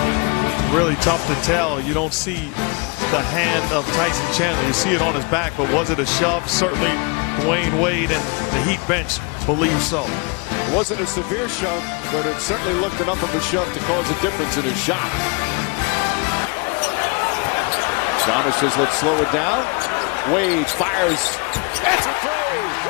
Really tough to tell. You don't see the hand of Tyson Chandler. You see it on his back, but was it a shove? Certainly Dwayne Wade and the Heat bench believe so. It wasn't a severe shove, but it certainly looked enough of a shove to cause a difference in his shot. Giannis says, let's slow it down. Wade fires. It's a three.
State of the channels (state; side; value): quieter; right; 31.4 dB